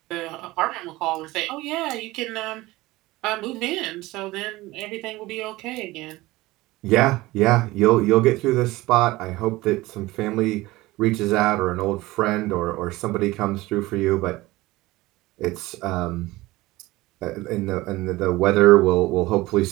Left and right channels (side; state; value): left; quieter; 19.3 dB